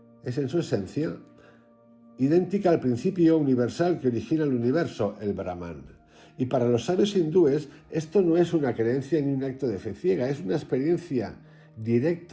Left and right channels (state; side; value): identical; both; correlation 1.00